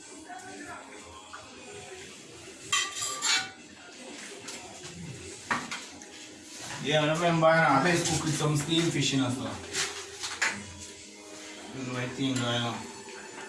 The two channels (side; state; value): both; identical; correlation 1.00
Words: Yeah, I remember now, best cook with some steamed fish in as well. This is my thing going on.